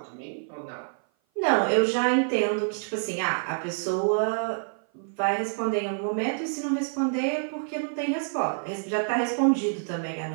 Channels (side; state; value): left; silent; 56 dB below the other